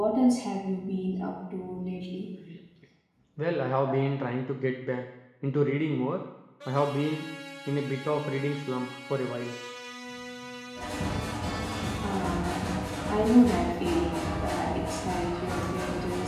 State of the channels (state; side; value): identical; both; correlation 1.00